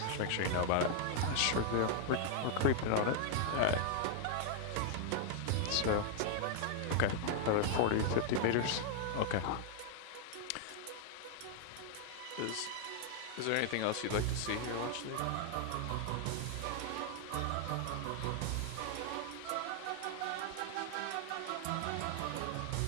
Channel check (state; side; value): different; both; correlation 0.00